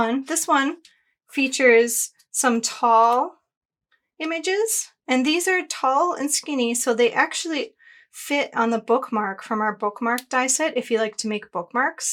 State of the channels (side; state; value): both; identical; correlation 1.00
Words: one features some tall images, and these are tall and skinny, so they actually fit on the bookmark from our bookmark die set if you like to make